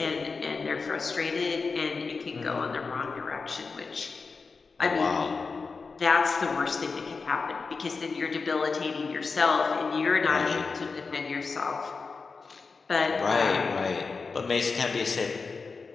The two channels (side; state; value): right; quieter; 4.5 dB